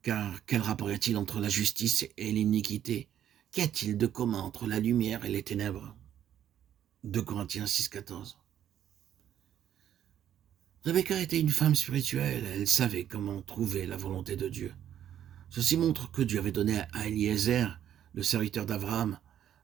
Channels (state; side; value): quieter; left; 10.4 dB